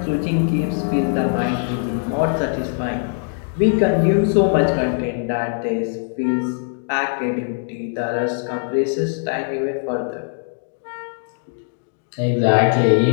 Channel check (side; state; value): right; silent; 65 dB below the other